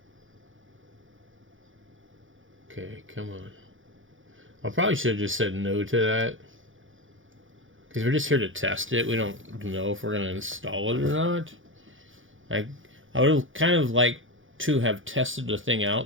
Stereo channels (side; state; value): left; late; 0.57 ms